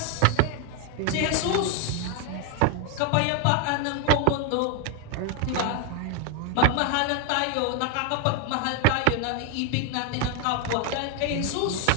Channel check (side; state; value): both; different; correlation 0.01